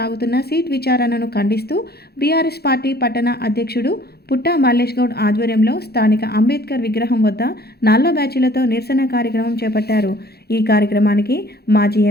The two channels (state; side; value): late; right; 0.46 ms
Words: సీట్ విచారణను ఖండిస్తూ బీఆర్ఎస్ పార్టీ పట్టణ అధ్యక్షుడు పుట్టా మల్లేష్ గౌడ్ ఆధ్వర్యంలో స్థానిక అంబేద్కర్ విగ్రహం వద్ద నల్ల బ్యాచీలతో నిరసన కార్యక్రమం చేపట్టారు. ఈ కార్యక్రమానికి మాజీ